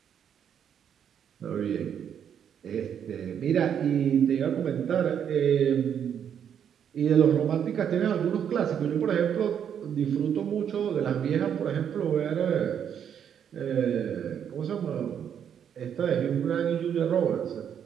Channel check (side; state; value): left; quieter; 8.6 dB